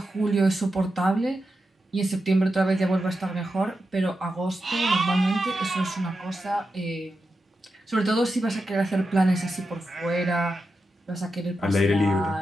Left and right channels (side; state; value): both; normal; correlation 0.89